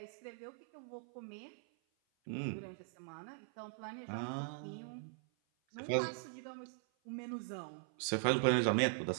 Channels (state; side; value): silent; left; 51 dB below the other